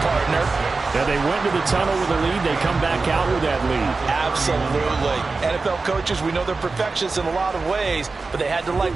partner, And they went to the tunnel with a lead. They come back out with that lead. Absolutely. NFL coaches, we know they're perfectionists in a lot of ways, but they had to like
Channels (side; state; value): left; quieter; 4.0 dB